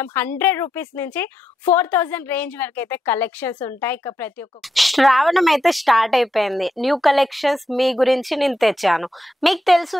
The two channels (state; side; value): normal; both; correlation 0.83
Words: 100 రూపీస్ నుంచి 4000 రేంజ్ వరకు అయితే కలెక్షన్స్ ఉంటాయి. ఇక ప్రతి ఒక్క శ్రావణం అయితే స్టార్ట్ అయిపోయింది. న్యూ కలెక్షన్స్ మీ గురించి నేను తెచ్చాను. మీకు తెలుసు